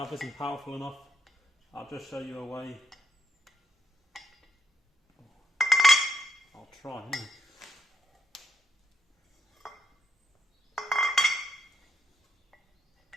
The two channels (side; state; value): both; normal; correlation 0.77